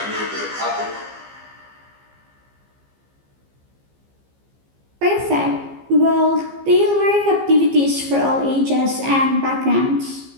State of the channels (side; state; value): left; late; 15 ms